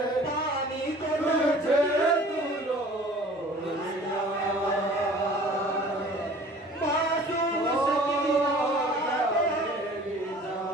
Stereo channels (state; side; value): normal; both; correlation 0.47